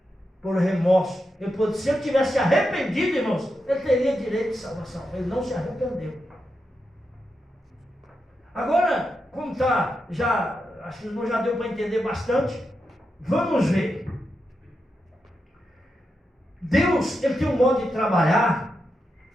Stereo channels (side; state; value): both; normal; correlation 0.87